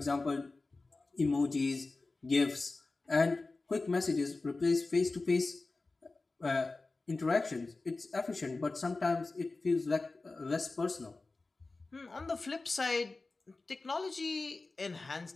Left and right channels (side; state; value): right; quieter; 3.5 dB